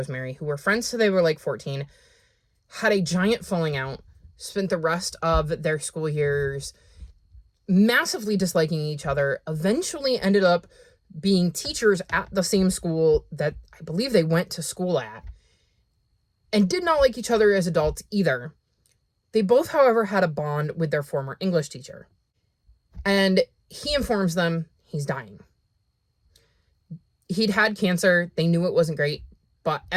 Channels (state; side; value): identical; both; correlation 1.00